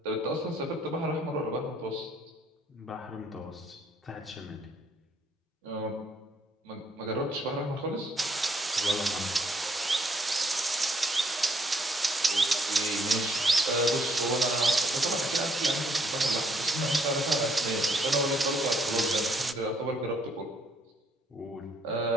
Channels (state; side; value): normal; both; correlation 0.69